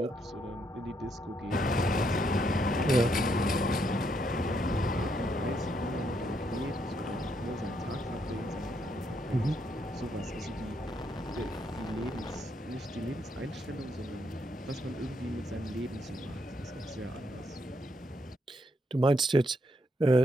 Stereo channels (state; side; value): normal; both; correlation 0.76